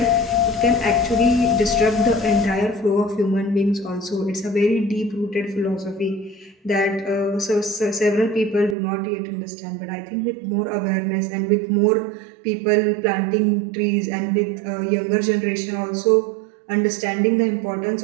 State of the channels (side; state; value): left; drops out; at 8.8 s